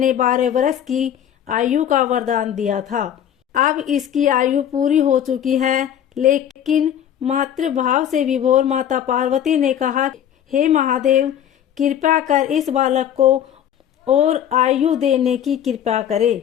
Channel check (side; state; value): right; quieter; 10.0 dB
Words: 12 वर्ष की आयु का वरदान दिया था। अब इसकी आयु पूरी हो चुकी है, लेकिन मातृभाव से विभोर माता पार्वती ने कहा, हे महादेव, कृपा कर इस बालक को और आयु देने की कृपा